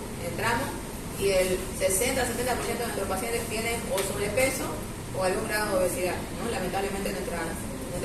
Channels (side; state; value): both; identical; correlation 1.00